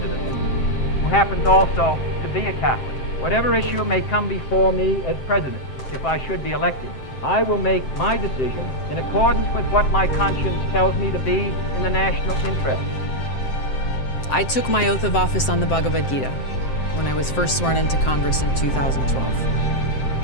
who happens also to be a Catholic. Whatever issue may come before me as president, if I should be elected, I will make my decision in accordance with what my conscience tells me to be in the national interest. I took my oath of office on the Bhagavad Gita when I was first sworn into Congress in 2012.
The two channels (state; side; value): late; right; 7.7 ms